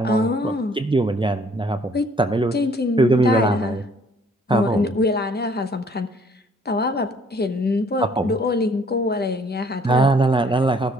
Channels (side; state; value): both; normal; correlation 0.60